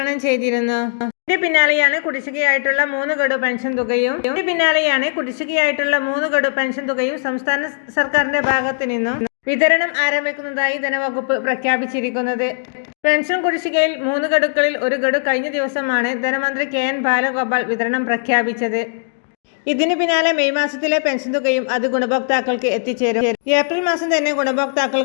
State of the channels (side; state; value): right; silent; 67 dB below the other